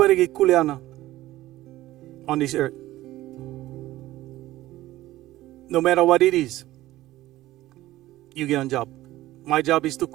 get kuleana on this earth. No matter what it is, you get a job. My job is to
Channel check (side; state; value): left; quieter; 16.1 dB